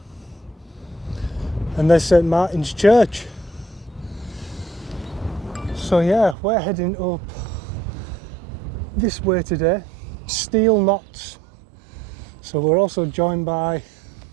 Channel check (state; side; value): drops out; left; at 6.4 s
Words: And there's St Martin's Church. So yeah, we're heading up this way today, Steel Knots. So we're also joined by